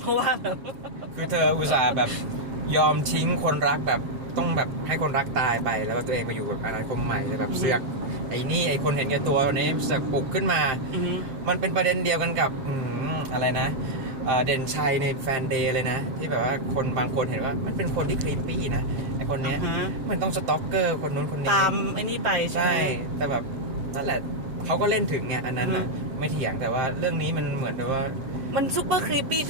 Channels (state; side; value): late; left; 7.5 ms